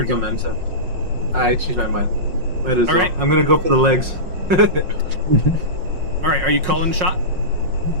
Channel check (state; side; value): late; left; 5.5 ms